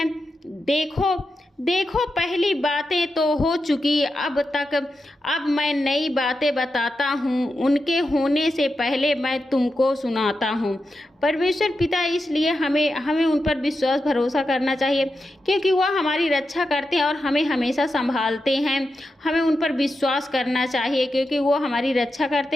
देखो पहली बातें तो हो चुकी, अब मैं नई बातें बताता हूँ, उनके होने से पहले मैं तुमको सुनाता हूँ। परमेश्वर पिता इसलिए हमें उन पर विश्वास भरोसा करना चाहिए, क्योंकि वह हमारी रक्षा करते हैं और हमें हमेशा संभालते हैं। हमें उन पर विश्वास करना चाहिए, क्योंकि वो हमारी रक्षा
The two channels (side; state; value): both; normal; correlation 0.89